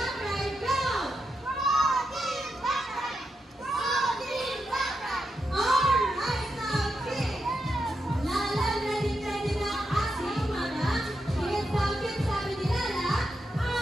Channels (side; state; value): both; normal; correlation 0.85